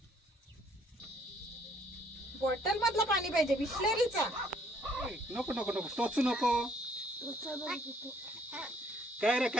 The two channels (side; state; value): both; normal; correlation 0.63